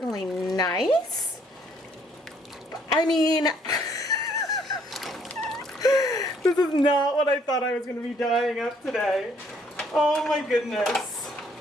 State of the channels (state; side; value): normal; both; correlation 0.65